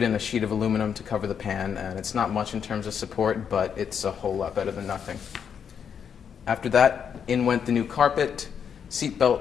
in a sheet of aluminum to cover the pan, and it's not much in terms of support, but it's a whole lot better than nothing. After that, in went the new carpet, seat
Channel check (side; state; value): right; quieter; 7.5 dB